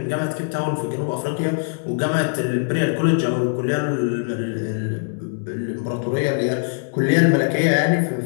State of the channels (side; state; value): right; silent; digital silence